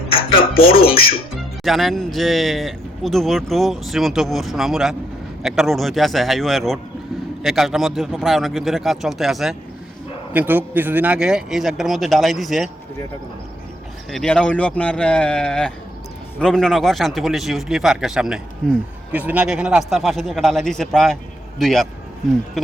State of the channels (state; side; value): normal; both; correlation 0.75